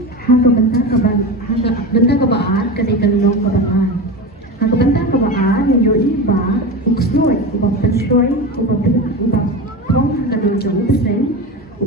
hangga bentang kebaan ketika long kebaan hangga bentang kebaan yang yoi ba uksnoy ubah penshoy ubah tong hangga dojong pesen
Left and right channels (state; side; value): normal; both; correlation 0.24